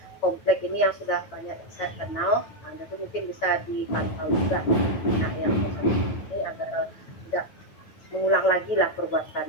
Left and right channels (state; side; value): late; right; 9.3 ms